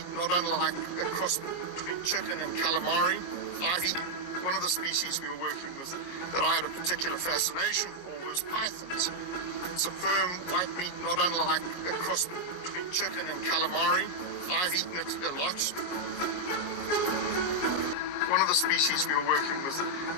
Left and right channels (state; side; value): late; right; 22 ms